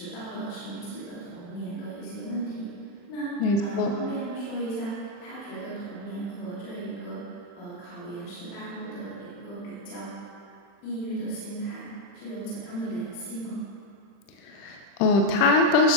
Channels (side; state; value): right; late; 40 ms